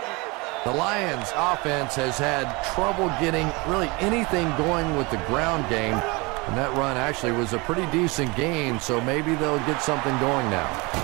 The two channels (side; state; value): left; quieter; 26.2 dB